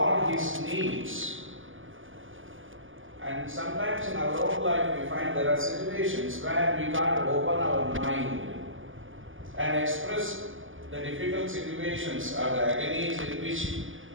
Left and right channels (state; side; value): late; left; 0.58 ms